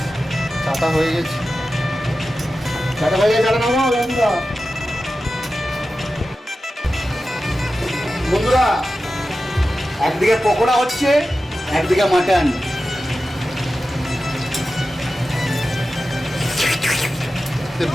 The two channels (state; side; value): normal; both; correlation 0.93